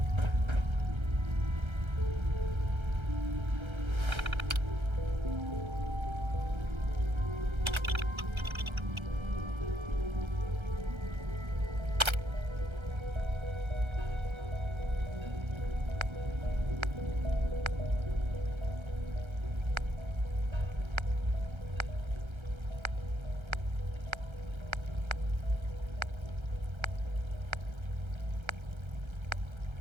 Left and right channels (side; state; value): left; late; 1.3 ms